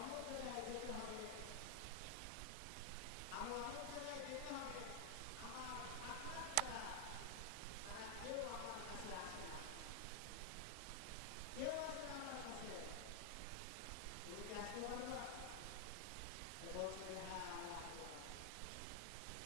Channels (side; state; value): both; different; correlation 0.00